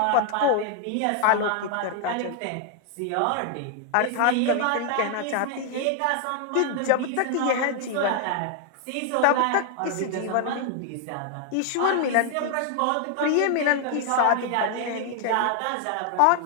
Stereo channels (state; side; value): different; both; correlation 0.00